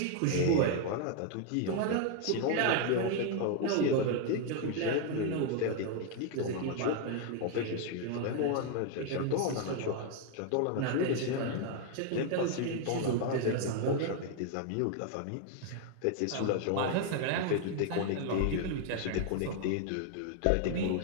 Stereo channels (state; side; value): different; both; correlation 0.00